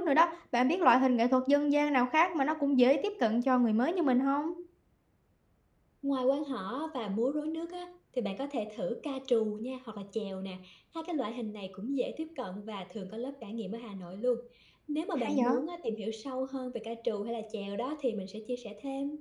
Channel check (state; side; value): identical; both; correlation 1.00